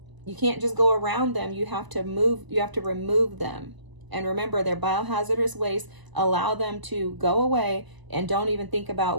You can't just go around them. You have to remove them. And remember, they're biohazardous waste. Allow them to go away and don't even think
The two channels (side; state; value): left; late; 1.0 ms